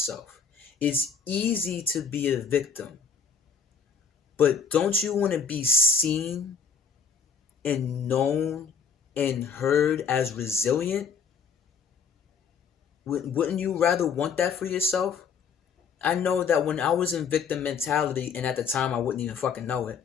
It's easy to be a victim, but don't you want to be seen and known and heard as resilient? Wouldn't you rather want that for yourself? I know that when I was in victim mentality, and at the time I wouldn't even fucking know it,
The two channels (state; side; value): quieter; right; 6.1 dB